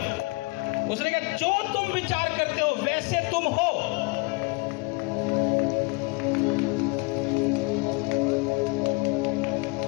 उसने कहा जो तुम विचार करते हो वैसे तुम हो।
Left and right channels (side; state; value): right; quieter; 27.3 dB